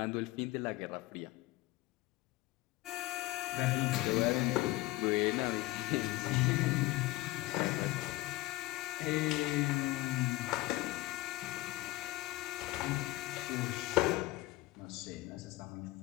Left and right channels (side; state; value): right; quieter; 19.2 dB